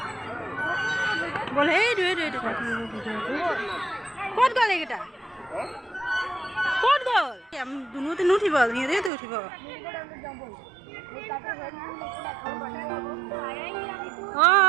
বল সেই ভিডিঅ'টো ক'ত গ'ল এইকেইটা ক'ত গ'ল দুনুতে নুঠিব সিহঁতেতো উঠিব।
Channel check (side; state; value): left; drops out; at 9.1 s